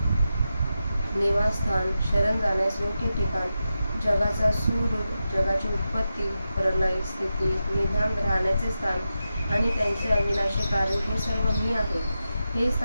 निवासस्थान, शरण जाण्यास योग्य ठिकाण, जगाचा सूर, जगाची उत्पत्ती, प्रलय, स्थिती, निधान, राहण्याचे स्थान आणि त्यांचे अविनाशी कारण हे सर्व मी आहे. हे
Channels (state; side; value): inverted; both; correlation -0.90